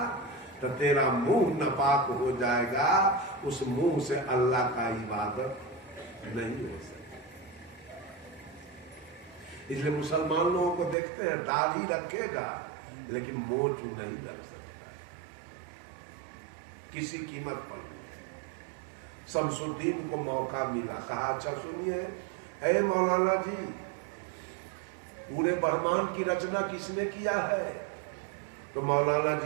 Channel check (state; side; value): drops out; left; at 11.0 s